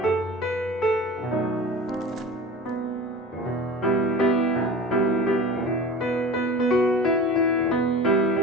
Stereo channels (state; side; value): normal; both; correlation 0.35